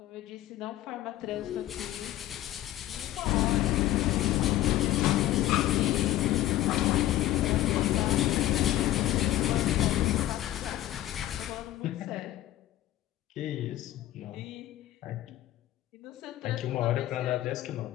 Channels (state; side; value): quieter; right; 14.4 dB